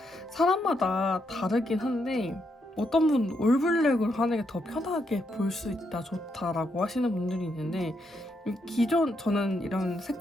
사람마다 다르긴 한데 어떤 분 올블랙으로 하는 게 더 편하게 볼 수 있다, 좋다라고 하시는 분들이 있는데 기존 저는 이런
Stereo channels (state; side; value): normal; both; correlation 0.79